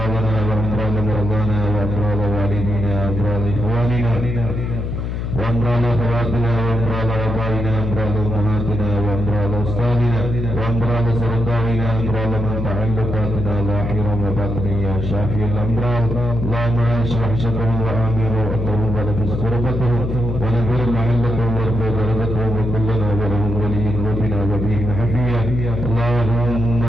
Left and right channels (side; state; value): left; noise; hum, 3 dB below the sound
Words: وامراض مرضانا وامراض والدينا وامراض اخواننا وامراض اخواتنا وامراض ابائنا وامراض امهاتنا وامراض استاذنا وامراض سرطاننا وامراض من تعلقاتنا ظاهرا وباطنا يا شافي الامراض. اللهم اشرح شرهم وامر واتهم ونفس كربتهم ونذر محلتهم وارفع درجتهم وكلنا ولهم ولي وبنا وبهم حفيا. اللهم